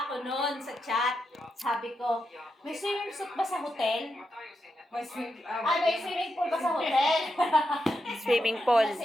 ako noon sa chat. Sabi ko, may swimming suit ba sa hotel? May sweet. May swimming pool ba sa hotel? Swimming pool.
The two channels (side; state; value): both; normal; correlation 0.85